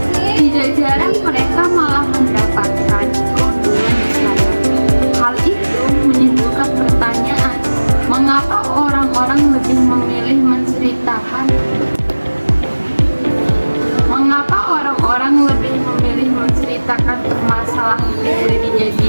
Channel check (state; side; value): inverted; both; correlation -1.00